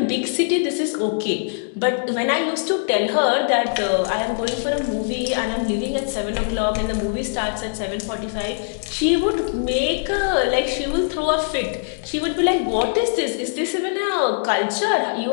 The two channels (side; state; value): right; silent; digital silence